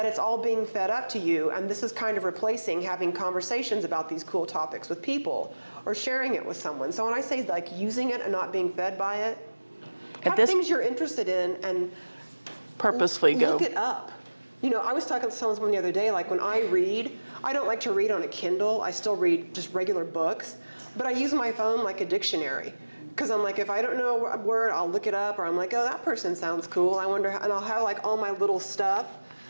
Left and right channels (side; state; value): both; inverted; correlation -1.00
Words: it's all being fed up to you, and this is kind of replacing having conversations about these cool topics with people or sharing it with someone. So when I say like using it and not being fed by it, have things you're interested in and Purposefully look it up. I was talking to someone the other day, like when I read, I don't like to read on a Kindle. I still read just regular books, but I use my phone like a dictionary. Because I'm like, if I don't know a word, I'll look it up, or I'm like, oh, that person sounds cool. I wonder, and I'll have like all my little stuff